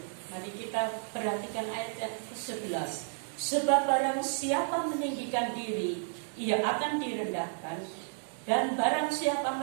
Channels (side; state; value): left; silent; digital silence